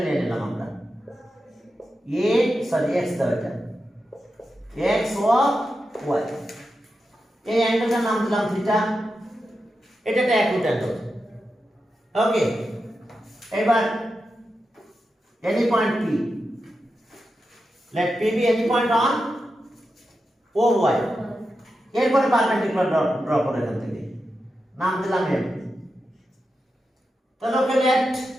নিয়ে নিলাম আমরা x দাও এটা x ও y এই অ্যাঙ্গেলটার নাম দিলাম থিটা এটা একটা অ্যাকুট অ্যাঙ্গেল ওকে এবার any point P let P be any point on OY এরপরে পারপেন্ডিকুলার ড্র করে এখান থেকে নাম দিলাম M তাহলে ওকে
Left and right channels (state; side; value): normal; both; correlation 0.89